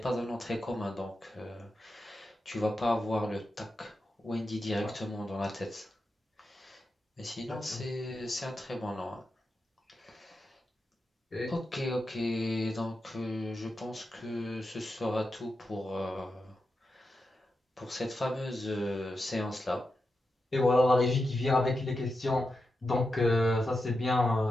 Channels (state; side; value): normal; both; correlation 0.89